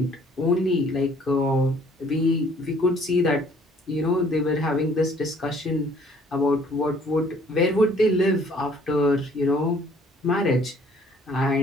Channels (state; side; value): normal; both; correlation 0.59